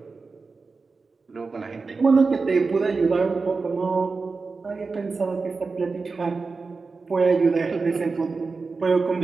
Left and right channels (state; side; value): quieter; left; 4.3 dB